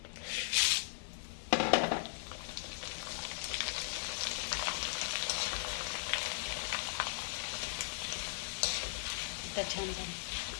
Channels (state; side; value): silent; right; digital silence